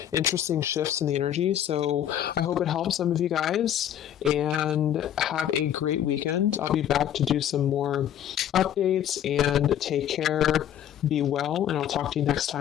interesting shifts in the energy. So I hope it helps some of you guys, and have a great weekend. I'll be back to do some more updates, and take care, be well, and I'll talk to you next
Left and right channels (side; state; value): right; quieter; 10.6 dB